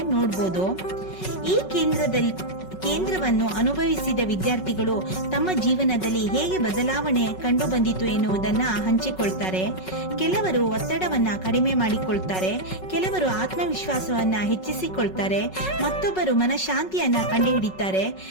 ನೋಡಬಹುದು. ಈ ಕೇಂದ್ರವನ್ನು ಅನುಭವಿಸಿದ ವಿದ್ಯಾರ್ಥಿಗಳು ತಮ್ಮ ಜೀವನದಲ್ಲಿ ಹೇಗೆ ಬದಲಾವಣೆ ಕಂಡು ಬಂದಿತು ಎನ್ನುವುದನ್ನ ಹಂಚಿಕೊಳ್ತಾರೆ. ಕೆಲವರು ಒತ್ತಡವನ್ನ ಕಡಿಮೆ ಮಾಡಿಕೊಳ್ತಾರೆ, ಕೆಲವರು ಆತ್ಮವಿಶ್ವಾಸವನ್ನ ಹೆಚ್ಚಿಸಿಕೊಳ್ತಾರೆ, ಮತ್ತೊಬ್ಬರು ಮನಃಶಾಂತಿಯನ್ನ ಕಂಡುಹಿಡಿತಾರೆ.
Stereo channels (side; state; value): right; late; 5.4 ms